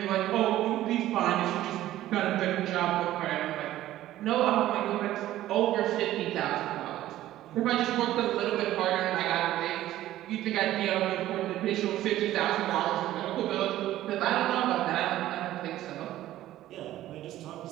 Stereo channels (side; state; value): left; quieter; 14.1 dB